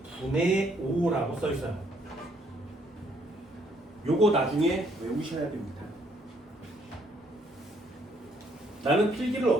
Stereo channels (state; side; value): normal; both; correlation 0.68